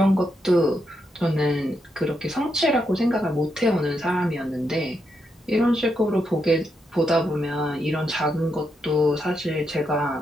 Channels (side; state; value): both; normal; correlation 0.82